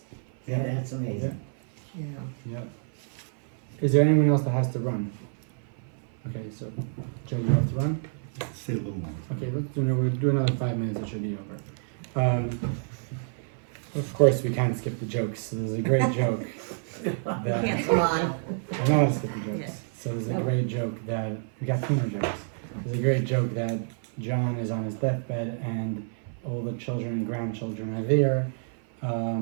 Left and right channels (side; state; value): left; silent; 56 dB below the other